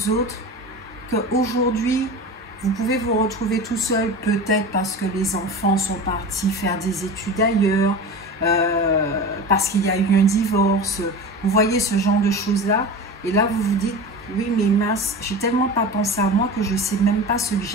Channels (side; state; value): both; normal; correlation 0.31